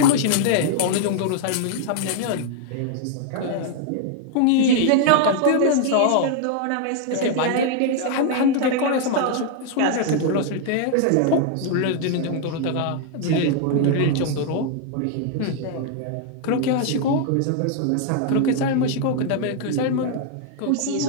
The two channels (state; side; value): different; both; correlation 0.00